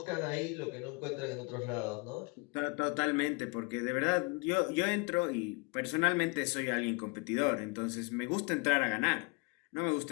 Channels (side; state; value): right; quieter; 29.6 dB